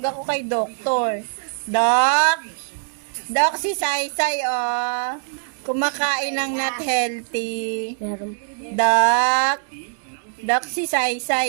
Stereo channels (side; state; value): left; silent; digital silence